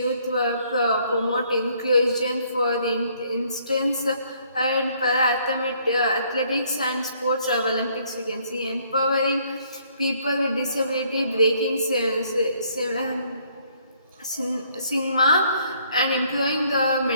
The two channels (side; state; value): both; inverted; correlation -0.65